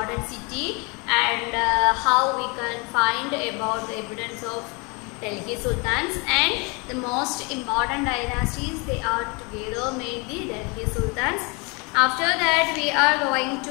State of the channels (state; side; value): quieter; right; 30.1 dB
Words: city and how we can find about the evidence of Delhi Sultans, and the most important dynasties they are together made the Delhi Sultans. After that we are going